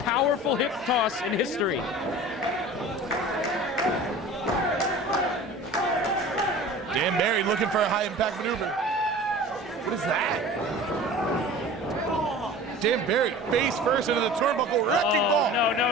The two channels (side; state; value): both; normal; correlation 0.40